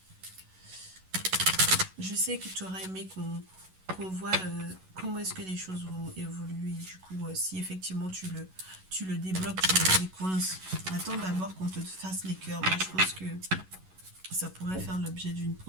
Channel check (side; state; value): left; late; 11 ms